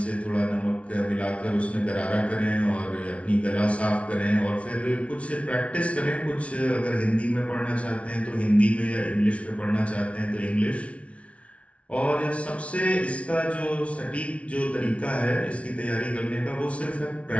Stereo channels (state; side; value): late; right; 0.063 ms